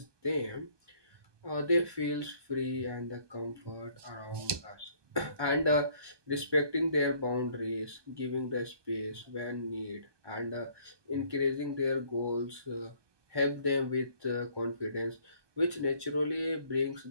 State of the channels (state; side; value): late; left; 1.2 ms